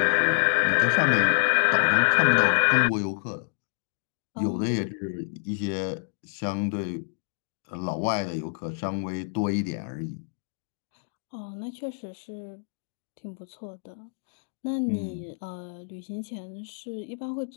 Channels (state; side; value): silent; right; digital silence